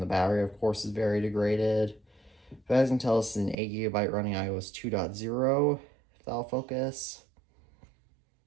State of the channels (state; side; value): drops out; left; at 3.6 s